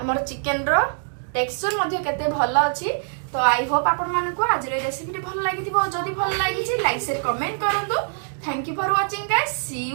चिकेन रो टेक्सचर मध्ये केते भलो अछि। तो आई होप आपण मानको आज रे रेसिपी भल लागिथिबो जदी भल लागिची लाइक शेयर कमेंट करंतु। Thank you for watching guys see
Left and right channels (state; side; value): silent; left; digital silence